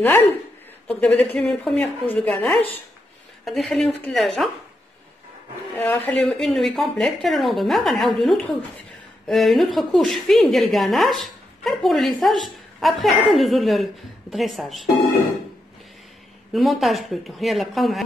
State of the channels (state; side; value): normal; both; correlation 0.83